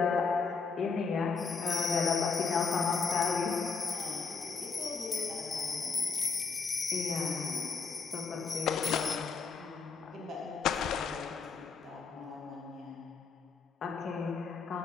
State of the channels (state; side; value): quieter; right; 5.0 dB